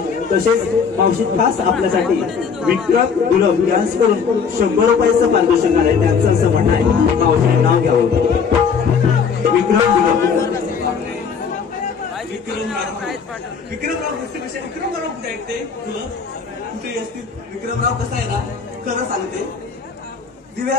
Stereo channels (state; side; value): quieter; right; 6.2 dB